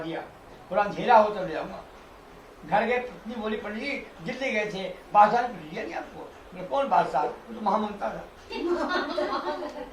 पूरा अंधेरा हो तब ले आऊंगा। घर गए, पत्नी बोली पंडित जी दिल्ली गए थे, बादशाह ने पूछ दिया नहीं आपको? मैं कौन बादशाह? वो तो महामंता था।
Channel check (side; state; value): both; identical; correlation 1.00